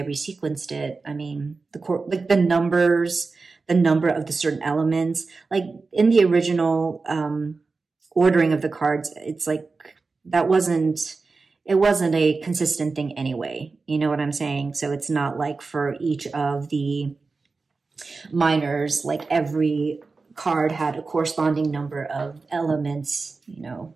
resequenced it. I mean, the numbers, the number of the certain elements, like in the original ordering of the cards, it's like it wasn't a consistent thing anyway. You know what I'm saying? So it's not like for each of the minors, like every card had a corresponding number of elements, you know,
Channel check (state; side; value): quieter; left; 4.1 dB